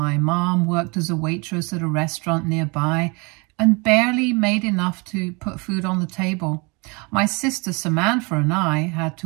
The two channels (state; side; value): quieter; left; 29.2 dB